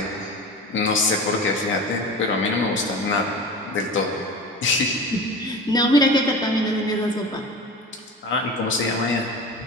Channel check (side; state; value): both; normal; correlation 0.32